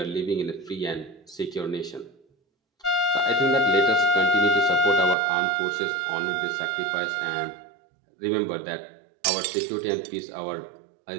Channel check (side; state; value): left; drops out; at 5.2 s